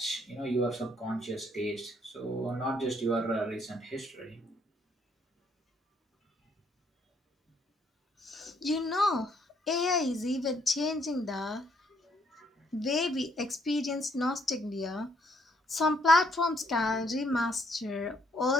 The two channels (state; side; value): normal; both; correlation 0.69